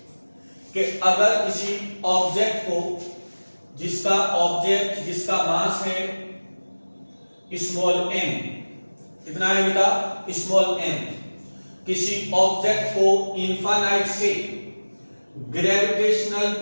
कि अगर किसी ऑब्जेक्ट को, जिसका मास है स्मॉल m, कितना है बेटा, स्मॉल m, किसी ऑब्जेक्ट को इनफाइनाइट से ग्रेविटेशनल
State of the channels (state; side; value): inverted; both; correlation -1.00